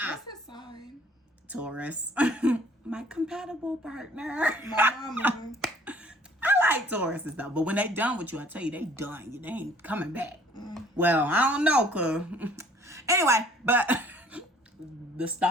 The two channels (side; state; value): both; normal; correlation 0.55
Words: his sign? Taurus. My compatible partner. My mama. I like Tauruses though, but when they done with you, I tell you, they done. They ain't coming back. Well, I don't know, cause anyway, but the